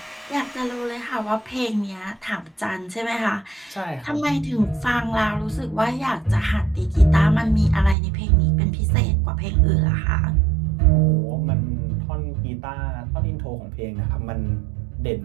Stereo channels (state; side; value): drops out; left; at 8.0 s